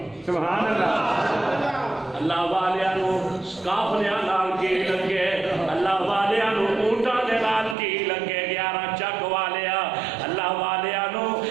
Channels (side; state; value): left; drops out; at 7.8 s